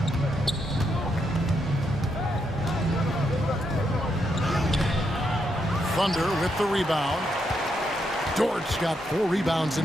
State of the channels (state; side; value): normal; both; correlation 0.80